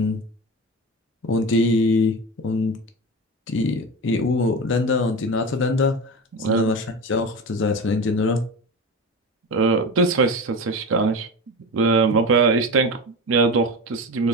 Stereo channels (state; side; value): normal; both; correlation 0.26